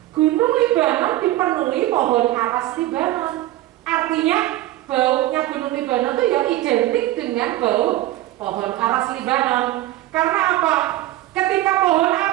Gunung Libanon dipenuhi pohon aras Libanon. Artinya baunya gunung Libanon itu ya identik dengan bau pohon aras Libanon. Karena apa? Ketika pohon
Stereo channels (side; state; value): left; quieter; 15.8 dB